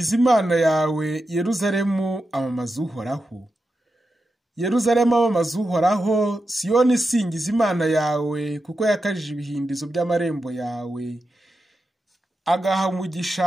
Imana yawe, Yeruzalemu amamaza uhoraho. Yeruzalemu amamaza uhoraho, Siyoni singiza Imana yawe, kuko yakajije ibihindizo by'amarembo yawe, agaha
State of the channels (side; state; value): both; normal; correlation 0.89